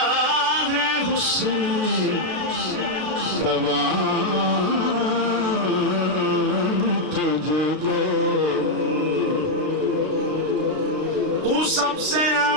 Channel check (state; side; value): late; left; 33 ms